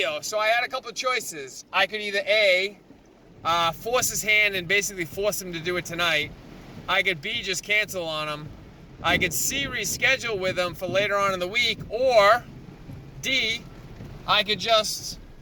So I had a couple of choices. I could either A, force his hand and basically force him to do it tonight. I could B, just cancel on him. I could C, reschedule with him for later on in the week, or D, I could just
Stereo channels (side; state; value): both; identical; correlation 1.00